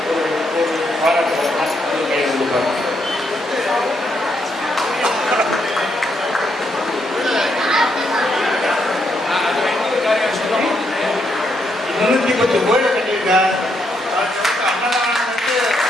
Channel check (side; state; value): both; normal; correlation 0.77